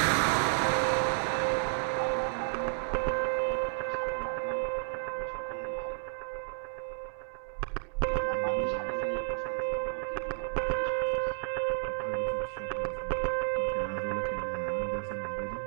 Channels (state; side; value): silent; left; digital silence